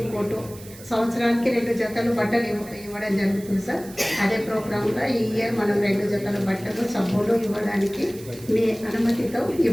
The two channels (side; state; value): right; noise; hiss, 19 dB below the sound